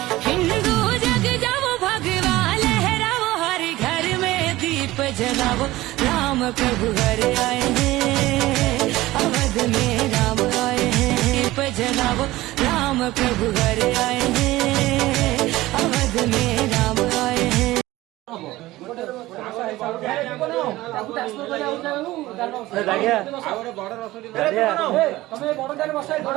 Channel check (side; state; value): left; quieter; 17.6 dB